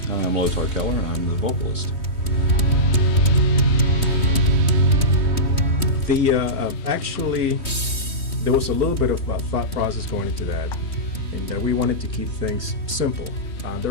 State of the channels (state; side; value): late; right; 3.2 ms